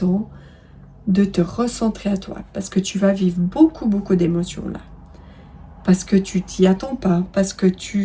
de te recentrer à toi, parce que tu vas vivre beaucoup d'émotions là, parce que tu t'y attends pas, parce que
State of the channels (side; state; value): both; identical; correlation 1.00